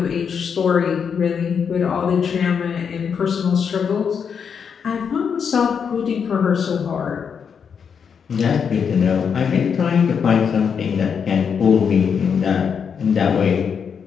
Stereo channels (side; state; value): right; quieter; 6.8 dB